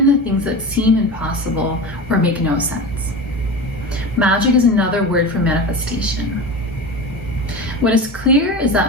the things that seem impossible or make no sense. Magic is another word for manifestation. What is clear is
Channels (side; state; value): both; normal; correlation 0.28